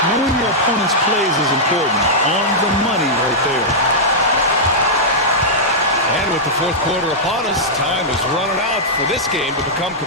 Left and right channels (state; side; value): normal; both; correlation -0.09